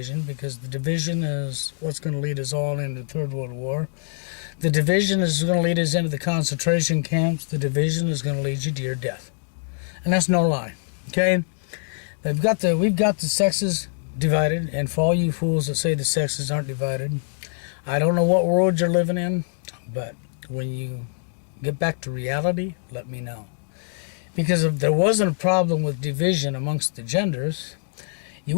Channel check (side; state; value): right; silent; 63 dB below the other